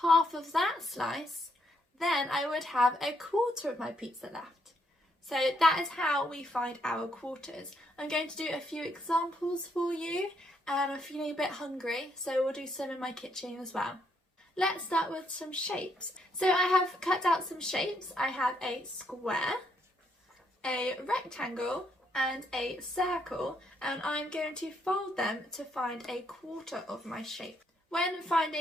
half of that slice, then I would have a quarter of my pizza left. So that is how we find our quarters. I'm going to do a few examples for you and I'm feeling a bit hungry, so we'll do some in my kitchen as well. Let's start with some shapes. So I have cut out some shapes. I have a square, a rectangle and a circle, and I'm going to fold them to find a quarter of my shape. When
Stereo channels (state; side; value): normal; both; correlation 0.74